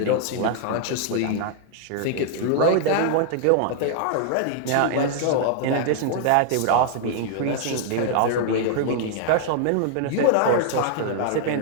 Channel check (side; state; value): both; different; correlation 0.00